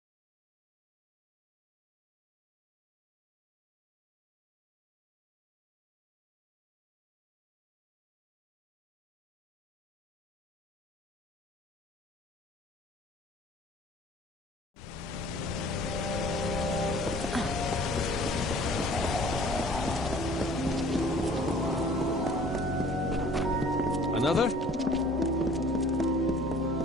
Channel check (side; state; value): both; normal; correlation 0.51